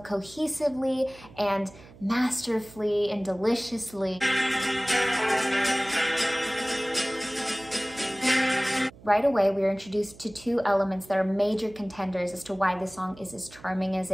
and masterfully and deliciously. Right away, we are introduced to two elements that are major contenders as to why this song is as charming as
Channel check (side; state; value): right; noise; hum, 21 dB below the sound